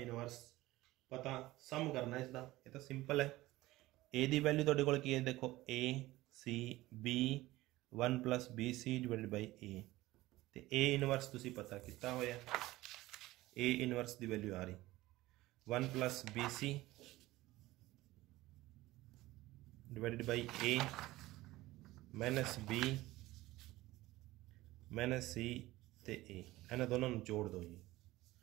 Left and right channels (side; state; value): left; quieter; 17.9 dB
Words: पता सम करना इसका, ये तो सिंपल है। ए दी वैल्यू तुहाडे कोल की है देखो A C B 1 plus B C divided by A, ते ए इनवर्स तुसी पता कितना होया, ए इनवर्स दी वैल्यू आ रही 1 plus B C divided by A minus B minus C ते ए, इन्हां दोनों नूं जोड़ दो जी,